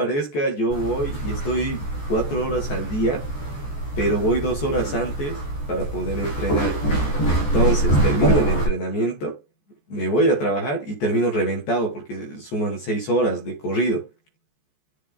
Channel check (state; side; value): late; right; 14 ms